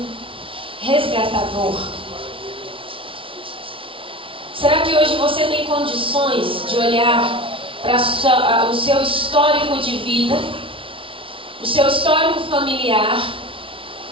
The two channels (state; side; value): late; left; 0.25 ms